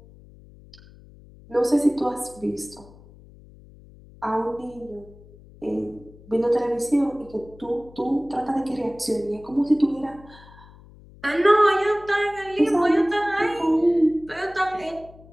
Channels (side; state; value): left; noise; hum, 22 dB below the sound